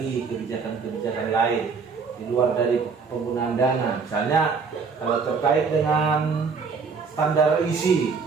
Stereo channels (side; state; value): left; quieter; 5.2 dB